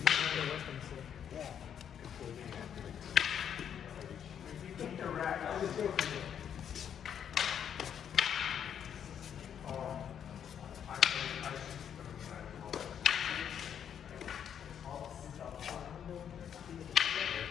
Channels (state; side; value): quieter; right; 8.7 dB